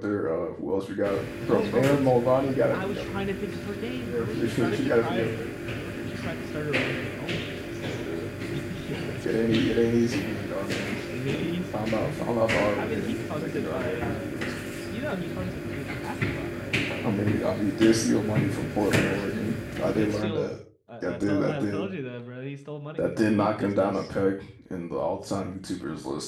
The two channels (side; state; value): both; identical; correlation 1.00